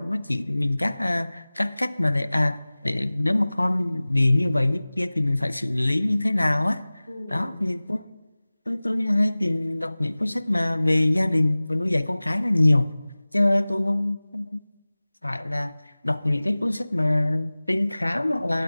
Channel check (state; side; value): inverted; both; correlation -0.99